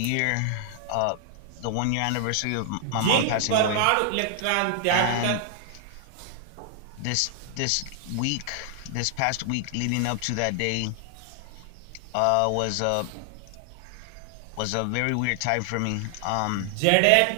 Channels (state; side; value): different; both; correlation 0.00